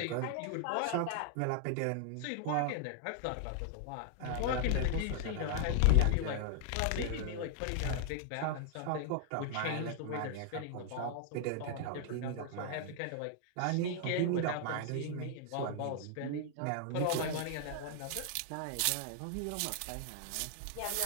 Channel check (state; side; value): different; both; correlation 0.00